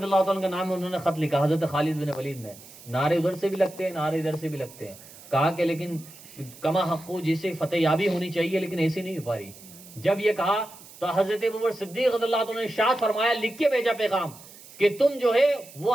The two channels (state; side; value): noise; right; hiss, 19 dB below the sound